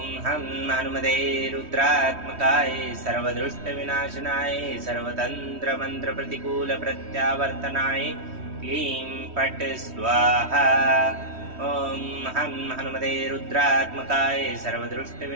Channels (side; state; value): left; late; 3.1 ms